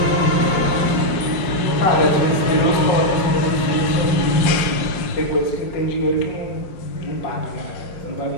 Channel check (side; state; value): right; late; 5.6 ms